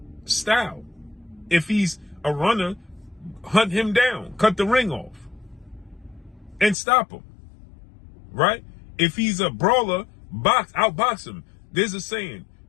style. If he's a runner, hunt him down, cut the ring off, and stop him, right? If he's a brawler, outbox him. There's a saying,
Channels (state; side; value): drops out; right; at 6.8 s